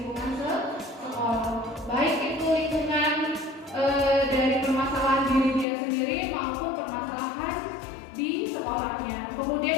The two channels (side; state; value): right; drops out; at 5.7 s